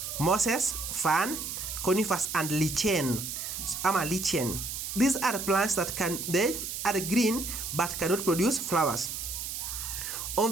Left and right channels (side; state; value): right; noise; hiss, 5 dB below the sound